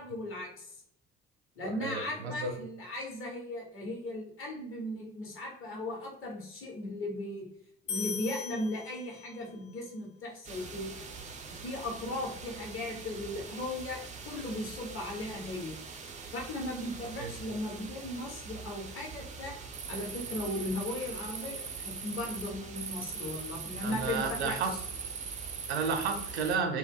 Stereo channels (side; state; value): both; normal; correlation 0.30